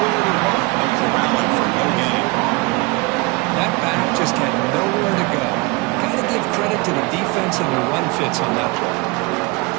to run, no corralling for no gain. That back just had nowhere to go. Got to give credit to the defense and the run fits on that play.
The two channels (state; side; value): quieter; left; 25.6 dB